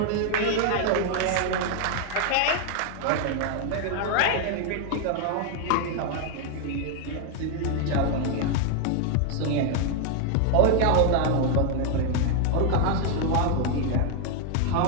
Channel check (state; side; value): different; both; correlation 0.00